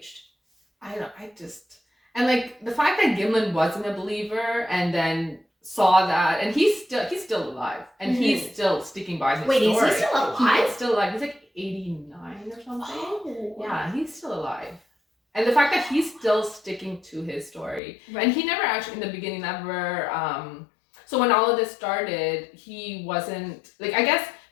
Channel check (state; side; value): drops out; right; at 17.8 s